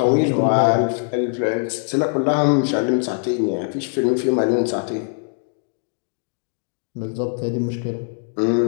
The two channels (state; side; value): silent; right; digital silence